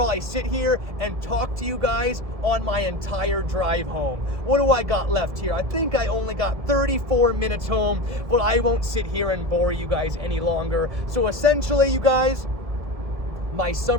sit here and talk to you guys on my entire drive home. What do I got left here? I think I only got 34 minutes home, but I won't sit here and bore you guys any longer. So essentially, you guys, my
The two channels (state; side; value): late; left; 1.7 ms